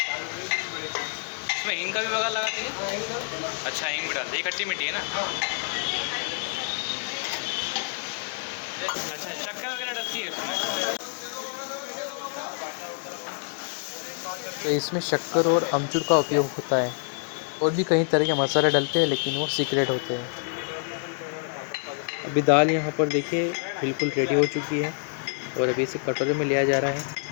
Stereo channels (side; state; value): right; silent; digital silence